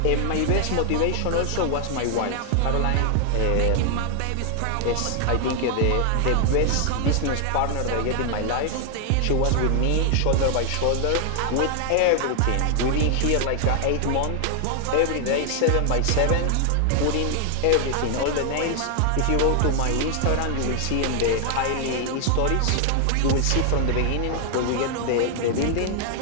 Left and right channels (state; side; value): different; both; correlation 0.00